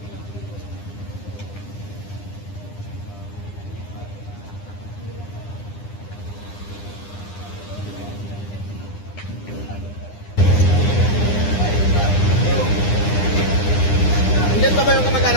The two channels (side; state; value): right; late; 9.9 ms